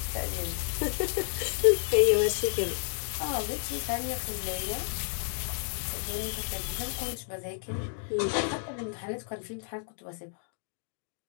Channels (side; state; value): right; silent; digital silence